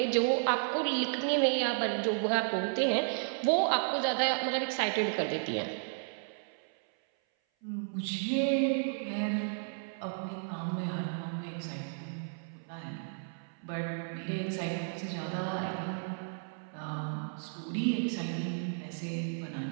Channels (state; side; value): silent; left; 56 dB below the other